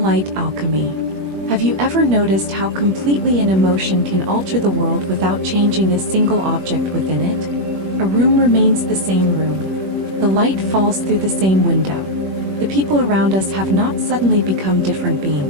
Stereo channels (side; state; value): left; late; 21 ms